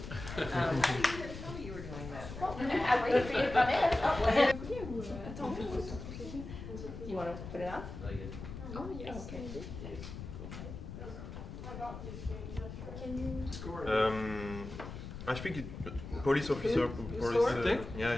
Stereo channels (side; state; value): left; noise; rumble, 10 dB below the sound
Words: I didn't even know you were doing that. Well, I waited for you to come in. You want to put it on? Oh, yes. Okay. I think police officer, police,